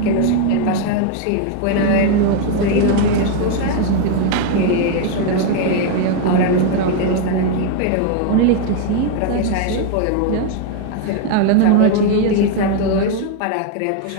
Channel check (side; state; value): both; different; correlation 0.01